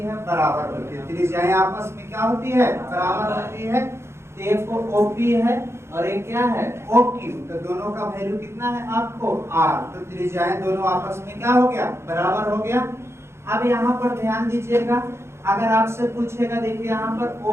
बराबर होती है, त्रिज्याएं आपस में क्या होती है बराबर होती है, तो एक को OP है और एक क्या है OQ, तो दोनों का वैल्यू कितना है आपको R, तो त्रिज्याएं दोनों आपस में क्या हो गया बराबर हो गया। अब यहाँ पर ध्यान दीजिएगा, अगर आपसे पूछेगा, देखिए यहाँ पर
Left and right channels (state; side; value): late; left; 0.13 ms